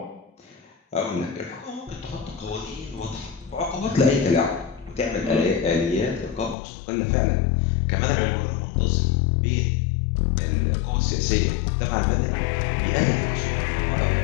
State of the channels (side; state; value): right; drops out; at 6.6 s